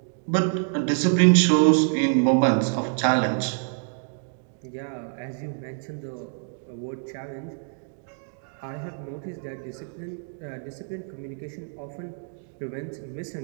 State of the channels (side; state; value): left; silent; 56 dB below the other